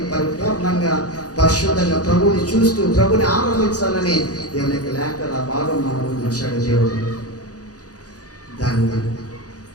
పరిపూర్ణంగా పరిశుద్ధంగా ప్రభుని చూస్తూ ప్రభుని ఆరాధించాలని దేవునికి లేఖల భాగం మనం ఉంచాడు దేవుడు. దాన్ని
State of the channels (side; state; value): right; late; 0.67 ms